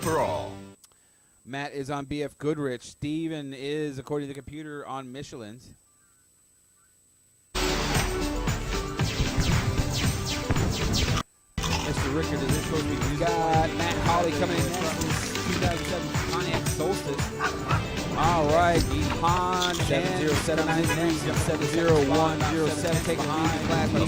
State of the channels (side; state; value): both; identical; correlation 1.00